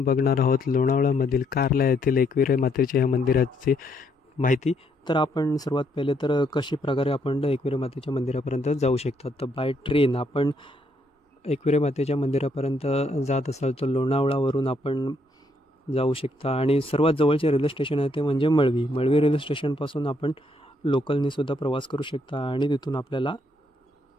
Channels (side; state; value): both; normal; correlation 0.73